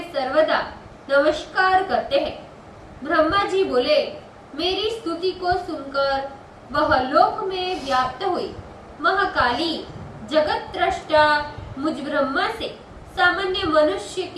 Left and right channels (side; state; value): both; identical; correlation 1.00